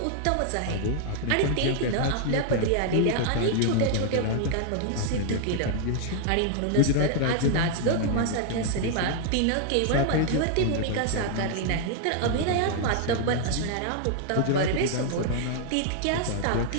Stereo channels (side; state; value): both; different; correlation 0.00